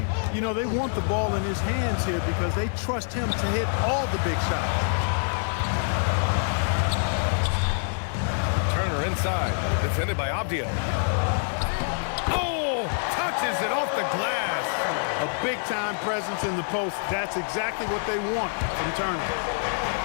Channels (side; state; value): right; silent; 60 dB below the other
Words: You know, they want the ball in his hands here because they trust him to hit all the big shots. Turner inside, defended by Avdia. Oh, touches it off the glass. A big-time presence in the post. That's exactly what they want from Turner.